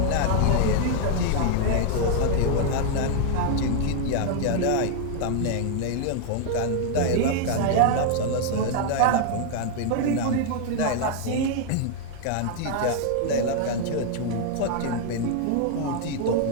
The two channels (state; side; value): different; both; correlation 0.00